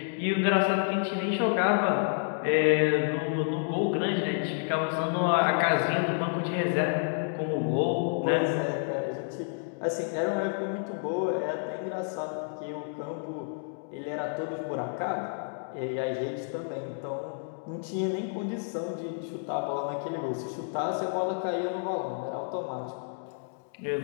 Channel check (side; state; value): right; silent; digital silence